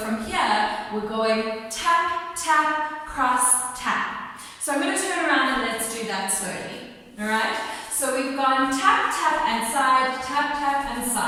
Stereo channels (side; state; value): both; identical; correlation 1.00